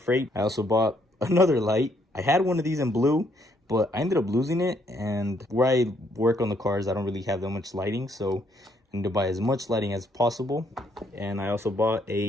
I also bought another light. I had one of these in blue, but I ended up losing it, and where I work on the cars, I don't really have that much lighting, so I need to buy as much lighting as possible. And I also bought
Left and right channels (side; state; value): both; normal; correlation 0.70